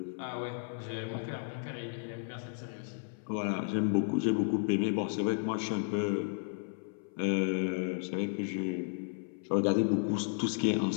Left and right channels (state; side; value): silent; right; 55 dB below the other